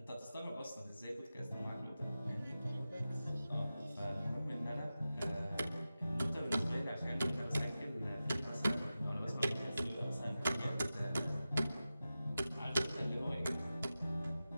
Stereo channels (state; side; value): inverted; both; correlation -0.94